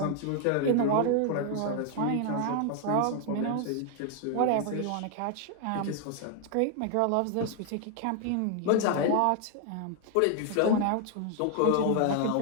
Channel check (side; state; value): both; different; correlation 0.00